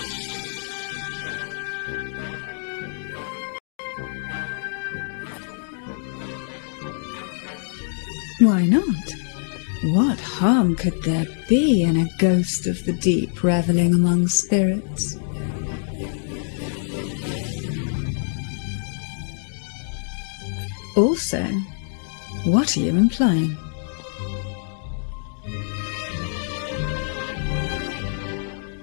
Why not? What harm could there be in a ghost of the deep reveling among spirits? Also, what are you implying?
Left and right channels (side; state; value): right; silent; digital silence